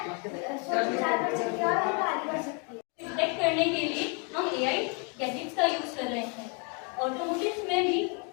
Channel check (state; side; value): quieter; right; 35.1 dB